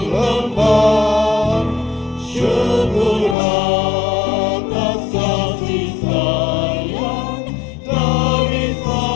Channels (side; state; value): right; drops out; at 3.4 s